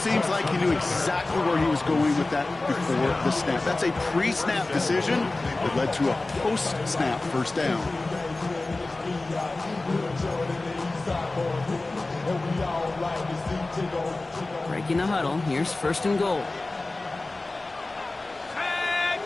like he knew exactly where he was going with that before the snap. That's a pre-snap decision that led to a post-snap first down. Breaking the huddle. Here's 1st and goal.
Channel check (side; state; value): right; quieter; 3.1 dB